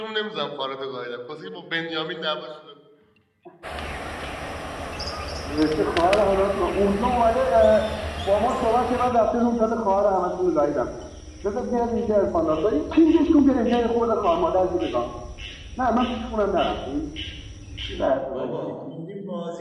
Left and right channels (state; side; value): identical; both; correlation 1.00